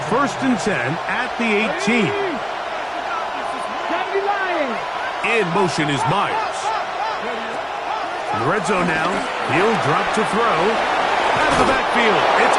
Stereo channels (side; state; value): both; identical; correlation 1.00